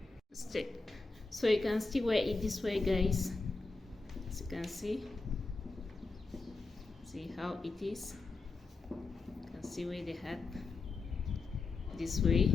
So you can still wear it this way, guys. As you can see how it is. You can see wear the hat this way.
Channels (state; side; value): quieter; right; 3.8 dB